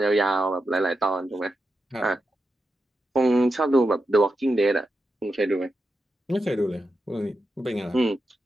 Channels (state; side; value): normal; both; correlation 0.88